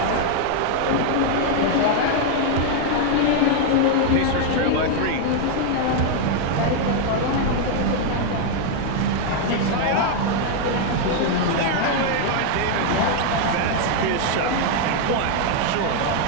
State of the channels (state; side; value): different; both; correlation 0.00